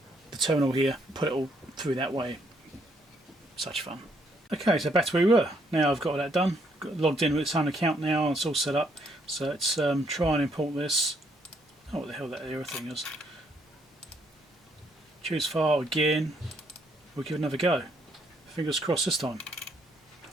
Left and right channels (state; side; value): normal; both; correlation 0.70